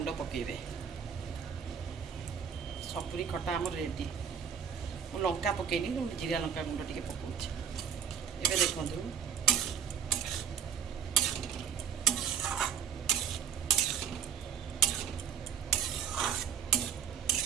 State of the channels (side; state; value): left; quieter; 8.1 dB